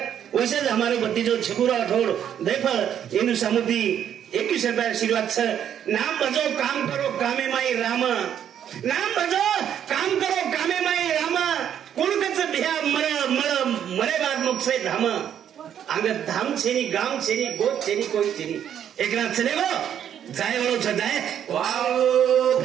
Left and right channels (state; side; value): quieter; left; 9.5 dB